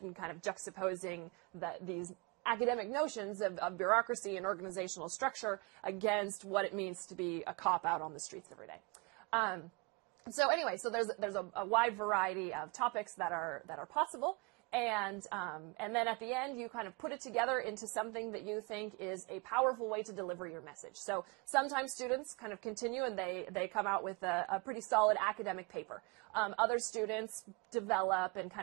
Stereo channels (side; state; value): left; quieter; 28.0 dB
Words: and kind of juxtaposing these academic notions of bureaucracy and organizational structure against what it means to be a cop out on the streets every day. So anyway, so there's a wide variety of topics that are possible. And then at the end, you kind of put it together into something that you think is a powerful way to deliver your message. So sometimes students kind of continue and they come out with a pretty solid academic paper. Other students develop and